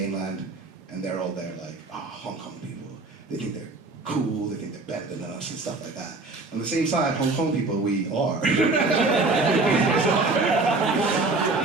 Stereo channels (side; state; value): left; quieter; 3.5 dB